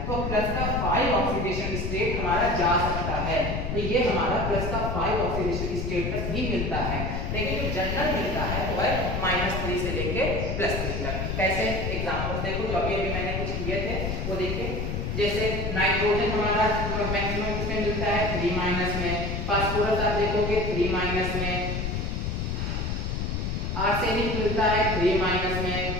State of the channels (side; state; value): left; noise; rumble, 2 dB below the sound